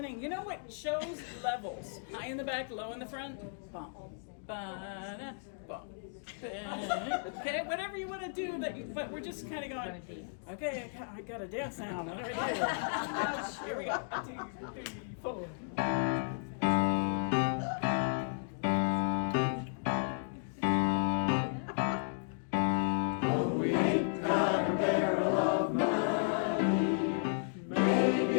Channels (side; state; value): right; silent; digital silence